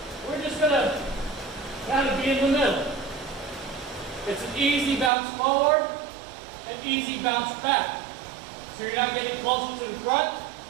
We're just going to kind of be in the middle. It's an easy bounce forward and easy bounce back. So you're not getting closer to the front.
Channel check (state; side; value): drops out; left; at 5.1 s